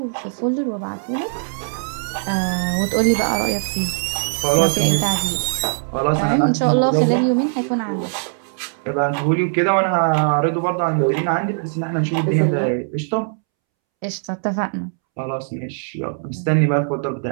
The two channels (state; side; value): silent; left; 65 dB below the other